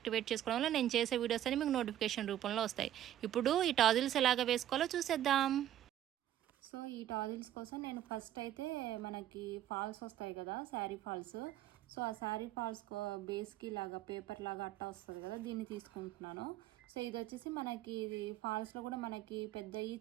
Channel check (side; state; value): left; quieter; 12.1 dB